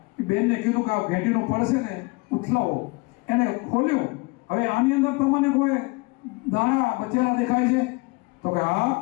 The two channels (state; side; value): quieter; right; 26.3 dB